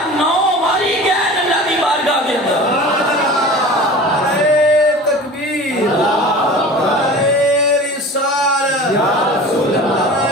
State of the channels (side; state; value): both; normal; correlation 0.38